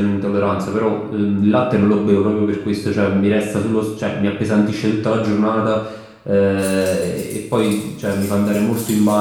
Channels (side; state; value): both; identical; correlation 1.00